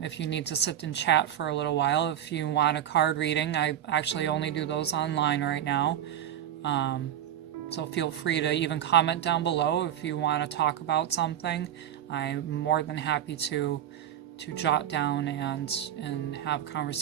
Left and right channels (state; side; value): quieter; left; 10.6 dB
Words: you need to sit and chat for a little while. If you want a card reading, I actually only do those online right now. So feel free to even comment down below if you want to talk about something. I'm more than happy to jot down and have a